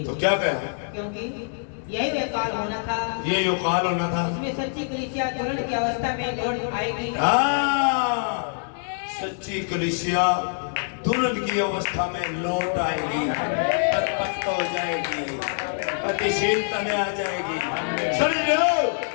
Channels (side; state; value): right; silent; digital silence